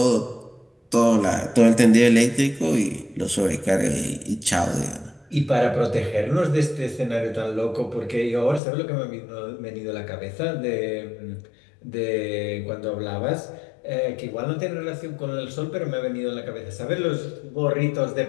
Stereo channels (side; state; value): right; drops out; at 8.6 s